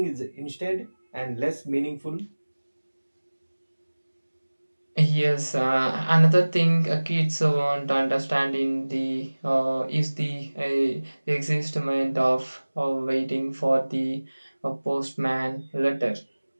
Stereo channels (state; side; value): inverted; both; correlation -1.00